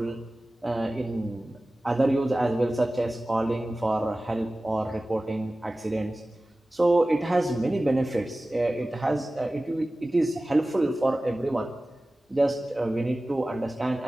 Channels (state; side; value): normal; both; correlation 0.97